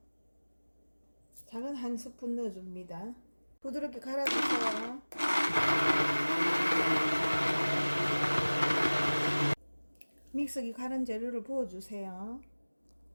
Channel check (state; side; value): inverted; both; correlation -1.00